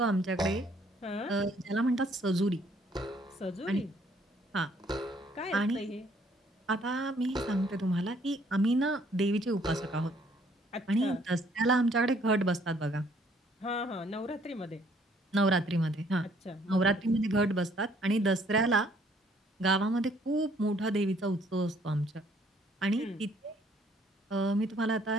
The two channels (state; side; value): normal; both; correlation 0.63